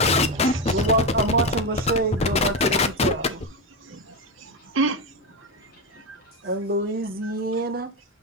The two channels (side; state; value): both; normal; correlation 0.13